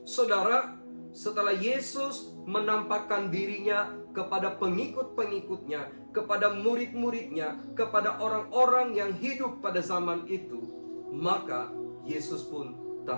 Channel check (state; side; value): inverted; both; correlation -1.00